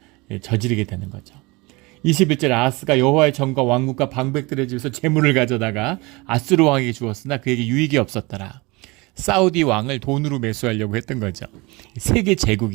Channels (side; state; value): left; quieter; 24.7 dB